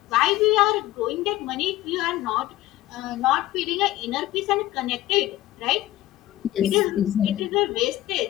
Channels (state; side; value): quieter; right; 15.5 dB